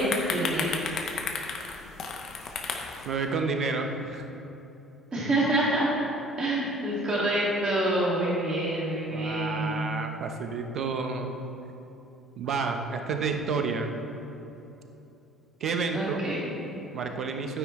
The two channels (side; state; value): both; normal; correlation 0.52